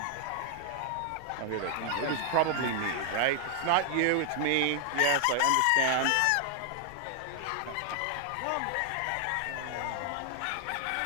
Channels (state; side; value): different; both; correlation 0.00